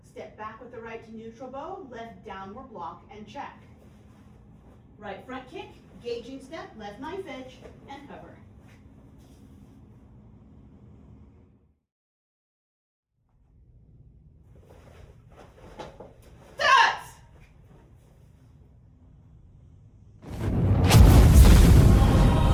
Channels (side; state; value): both; identical; correlation 1.00